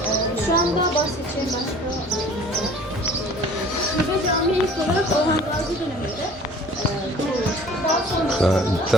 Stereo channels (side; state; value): both; normal; correlation 0.48